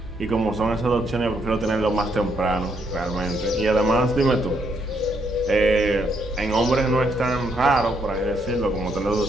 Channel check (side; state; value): both; normal; correlation 0.74